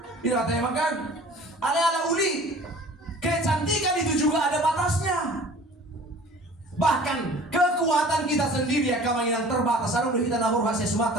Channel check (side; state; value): both; normal; correlation 0.46